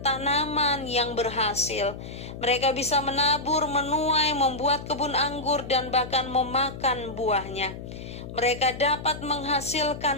tanaman yang berhasil. Mereka bisa menabur, menuai, membuat kebun anggur, dan bahkan memakan buahnya. Mereka dapat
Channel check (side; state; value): left; noise; hum, 11 dB below the sound